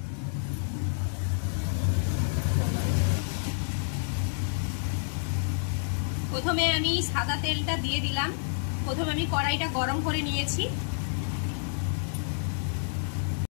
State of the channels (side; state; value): right; silent; digital silence